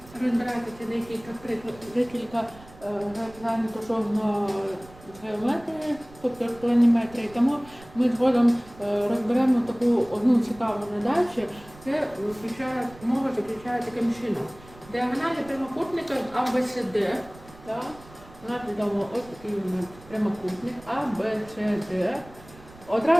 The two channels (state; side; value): noise; right; rumble, 21 dB below the sound